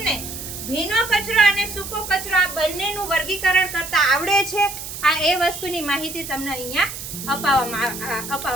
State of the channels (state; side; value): noise; right; hiss, 9 dB below the sound